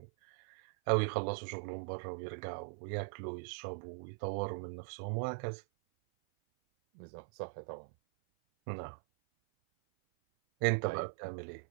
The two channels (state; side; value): silent; left; 51 dB below the other